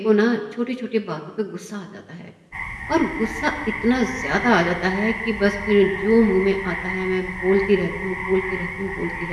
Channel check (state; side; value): identical; both; correlation 1.00